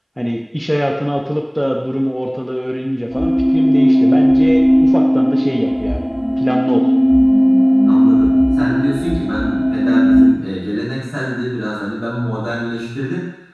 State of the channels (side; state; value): both; identical; correlation 1.00